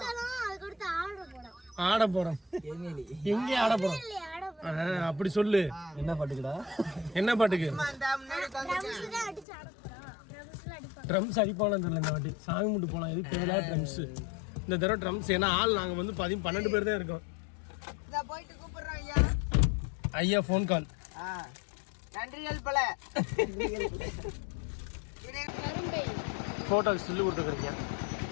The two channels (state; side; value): drops out; right; at 9.5 s